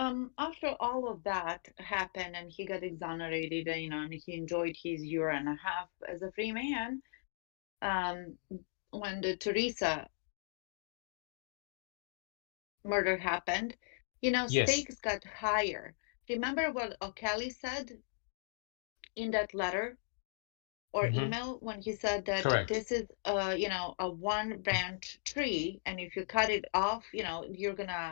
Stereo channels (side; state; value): right; silent; digital silence